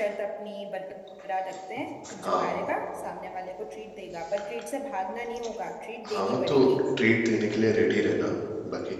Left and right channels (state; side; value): identical; both; correlation 1.00